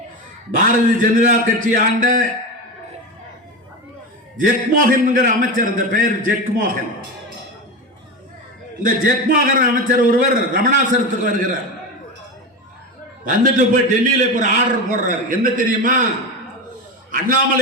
பாரதிய ஜனதா கட்சி ஆண்ட ஜெக்மோகன் என்கிற அமைச்சர், இந்த பெயர் ஜெக்மோகன். இந்த ஜெக்மோகன் அமைச்சர் ஒருவர் ரமணாசரத்துக்கு வருகிறார். வந்துட்டு போய் டெல்லியில ஒரு ஆர்டர் போடுறார். என்ன தெரியுமா?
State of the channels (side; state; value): both; normal; correlation 0.21